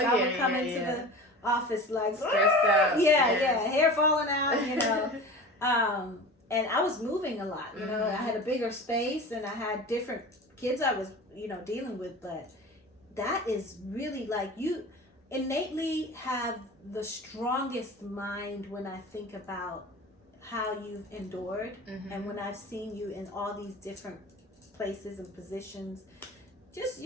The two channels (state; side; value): normal; both; correlation 0.35